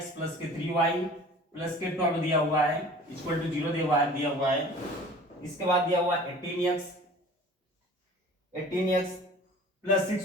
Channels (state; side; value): normal; both; correlation 0.45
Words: + 3y + 12 दिया हुआ है इक्वल टू 0 दिया हुआ है। इसके बाद दिया हुआ है 18x +